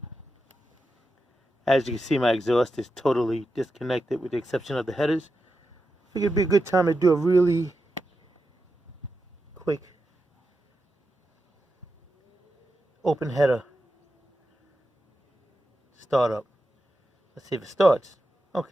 my exhaust is totally disconnected with the exception of the headers. I think it'd be a good time to do a really quick open header startup. Let's see if it starts.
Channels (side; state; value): both; normal; correlation 0.89